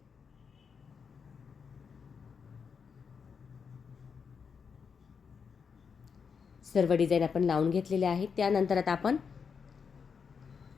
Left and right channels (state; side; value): quieter; right; 6.1 dB